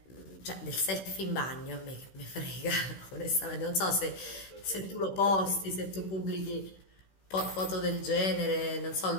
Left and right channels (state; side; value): late; right; 16 ms